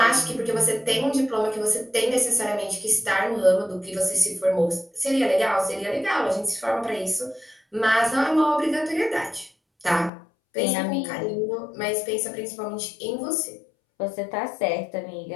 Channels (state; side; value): drops out; right; at 10.1 s